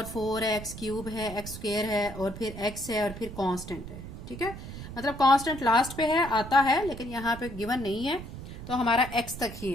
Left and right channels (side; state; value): right; noise; rumble, 11 dB below the sound